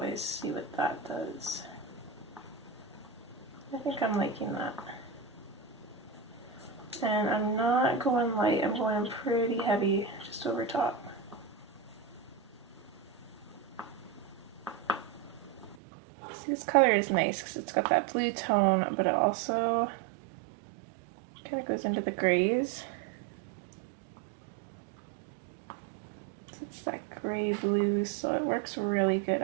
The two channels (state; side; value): drops out; left; at 15.8 s